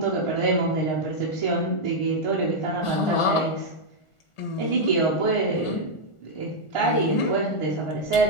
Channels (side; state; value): right; late; 1.4 ms